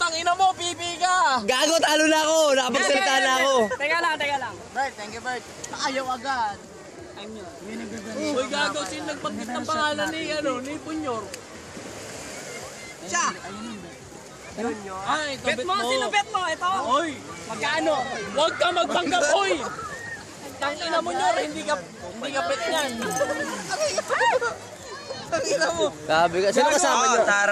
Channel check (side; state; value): both; identical; correlation 1.00